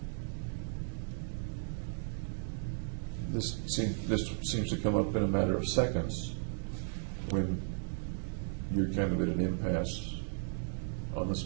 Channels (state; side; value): silent; left; digital silence